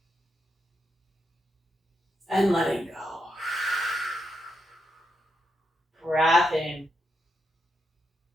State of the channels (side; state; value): both; normal; correlation 0.83